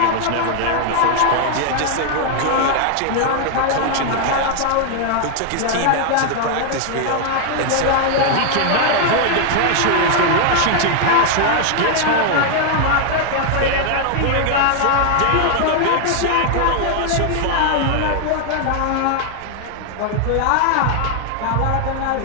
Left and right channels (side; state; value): both; different; correlation 0.00